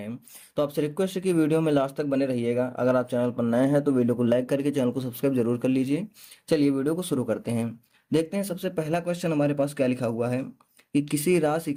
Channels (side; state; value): both; identical; correlation 1.00